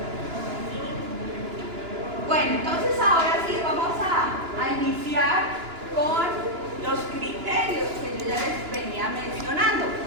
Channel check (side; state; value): left; late; 2.9 ms